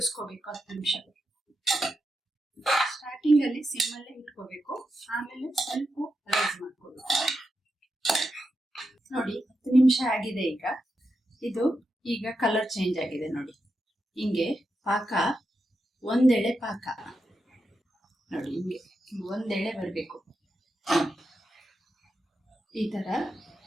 10 ನಿಮಿಷ. ಸ್ಟಾರ್ಟಿಂಗ್ ಅಲ್ಲಿ ಸಿಮ್ಮಲ್ಲೇ ಇಟ್ಕೋಬೇಕು, ಆಮೇಲೆ ಸ್ವಲ್ಪ ರೈಸ್ ಮಾಡ್ಕೋಬೇಕು. ನೋಡಿ 10 ನಿಮಿಷ ಆಗಿದೆ. ಈಗ ಕಲರ್ ಚೇಂಜ್ ಆಗಿದೆ ನೋಡಿ. ಹಿಂಗೆ ಪಾಕ, ಒಂದೆಳೆ ಪಾಕ ನೋಡಿ, ಹಿಂಗೆ ಒಂದೆಳೆ ಬರಬೇಕು. ಈ ತರ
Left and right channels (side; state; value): both; normal; correlation 0.87